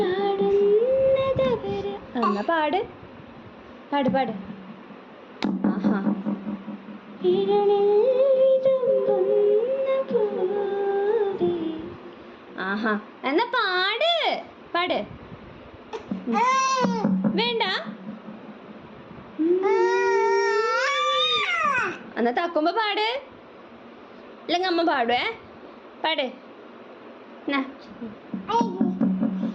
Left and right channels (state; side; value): identical; both; correlation 1.00